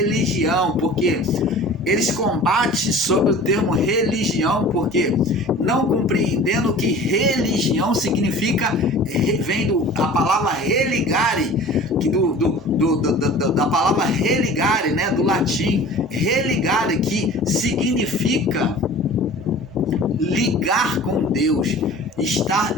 porque eles combatem sobre o termo religião, porque não compreendendo que religião significa, vem da palavra religare, da palavra religare, né, do latim, religare, que significa ligar com Deus, estar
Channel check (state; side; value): normal; both; correlation 0.42